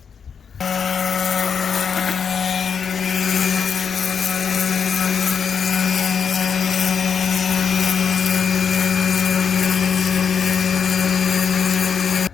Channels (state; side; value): quieter; right; 6.7 dB